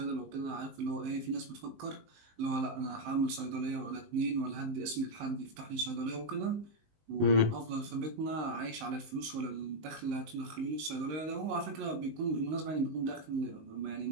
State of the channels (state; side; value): late; left; 19 ms